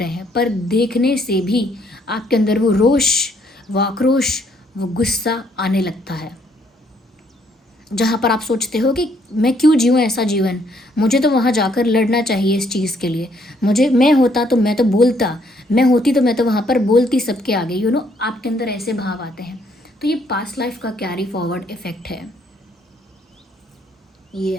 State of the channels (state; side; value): normal; both; correlation 0.68